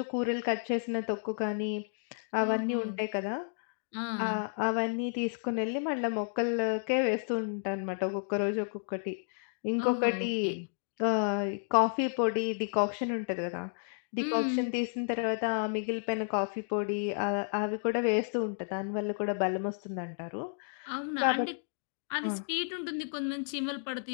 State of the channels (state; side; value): silent; right; digital silence